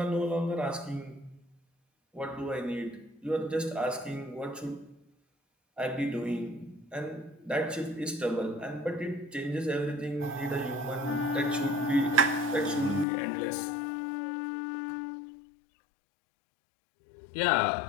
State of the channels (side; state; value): right; drops out; at 13.1 s